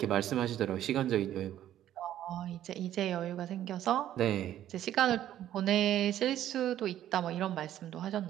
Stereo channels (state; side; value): quieter; left; 11.9 dB